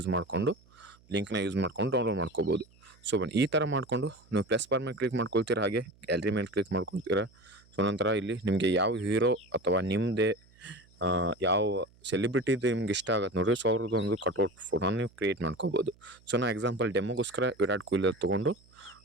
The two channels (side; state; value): right; noise; hum, 29 dB below the sound